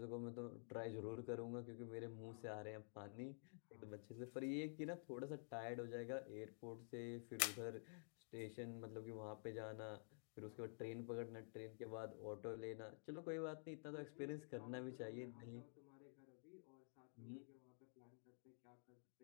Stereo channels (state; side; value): silent; right; digital silence